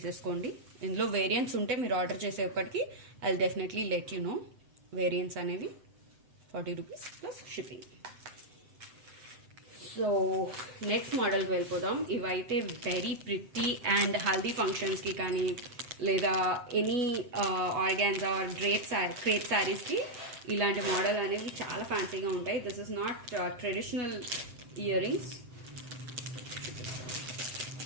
ఇందులో వేరియంట్స్ ఉంటే మీరు ఆర్డర్ చేసేప్పటికి I will definitely let you know variants అనేవి. $40 ప్లస్ షిప్పింగ్. సో నెక్స్ట్ మోడల్కి వెళ్ళిపోదాం. ఇవైతే వెరీ ప్రిటీ అండ్ హల్దీ ఫంక్షన్స్కి కానీ లేదా ఎనీ ఆర్గాన్జా ఆర్ క్రేప్ శారీస్కి ఇలాంటి మోడల్ అనేవి చాలా ఫ్యాన్సీగా ఉంటాయి. This is not traditional ear rings.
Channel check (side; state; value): left; late; 7.8 ms